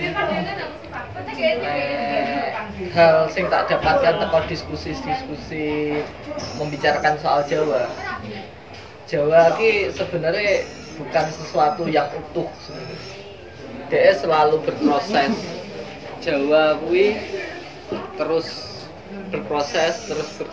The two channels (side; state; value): both; identical; correlation 1.00